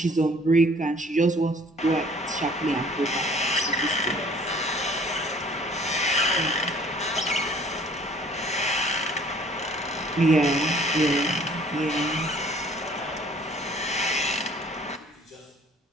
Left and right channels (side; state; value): both; normal; correlation 0.55